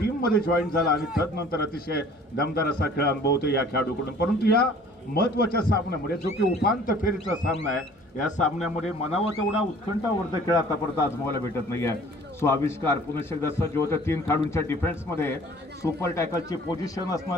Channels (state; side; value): normal; both; correlation 0.51